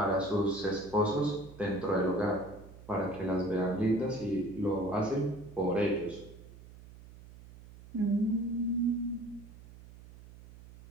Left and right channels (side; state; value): right; noise; hum, 19 dB below the sound